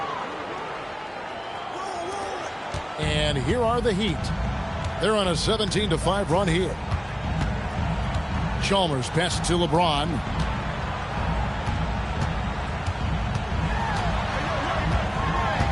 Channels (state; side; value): identical; both; correlation 1.00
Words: And here are the Heat. They're on a 17-5 run here. Chalmers passes to LeBron.